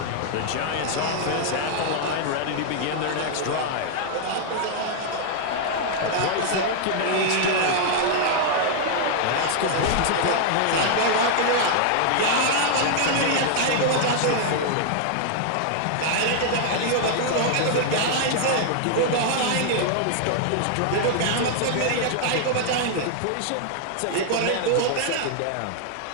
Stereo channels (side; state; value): both; different; correlation 0.00